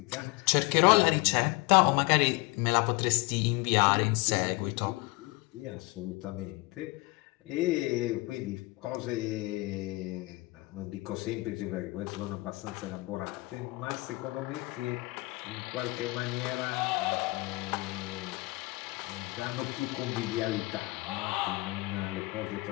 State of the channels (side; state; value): right; quieter; 23.2 dB